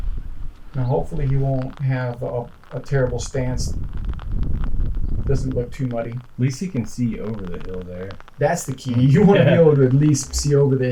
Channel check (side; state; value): both; identical; correlation 1.00